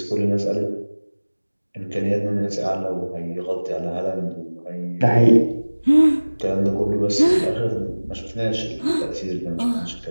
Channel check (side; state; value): both; inverted; correlation -1.00